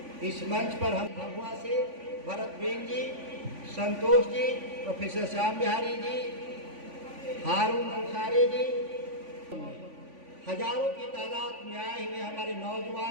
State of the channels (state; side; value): late; left; 3.5 ms